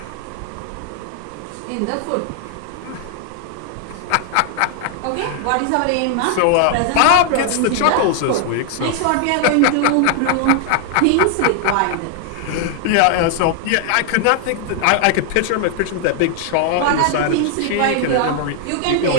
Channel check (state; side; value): different; both; correlation 0.00